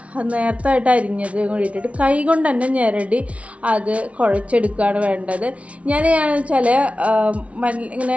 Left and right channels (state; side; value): late; left; 0.064 ms